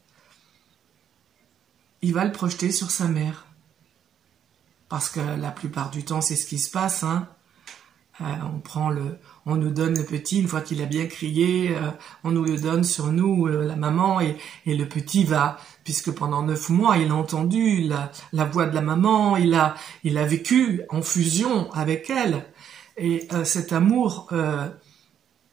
il va le projeter sur sa mère. Parce que la plupart du temps c'est ce qui se passe, hein. On nous donne le petit, une fois qu'il a bien crié, on nous le donne sur nous, la maman, et le petit va, puisque pendant 9 mois, il a entendu la voix de la maman, il a vécu en fusion avec elle, et cet amour,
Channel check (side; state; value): left; quieter; 9.2 dB